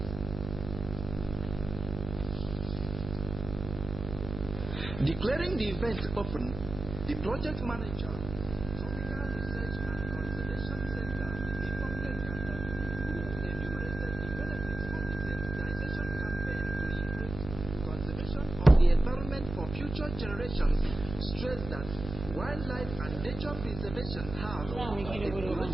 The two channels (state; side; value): noise; right; hum, 9 dB below the sound